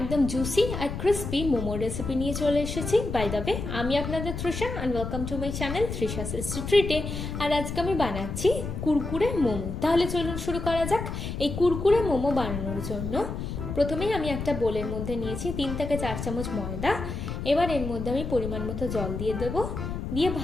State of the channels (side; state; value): left; noise; rumble, 5 dB below the sound